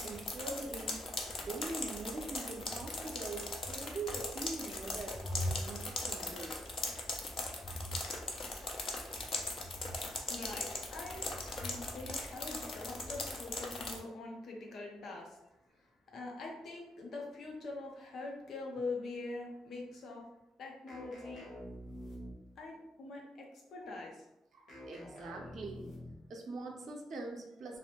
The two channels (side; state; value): both; normal; correlation 0.73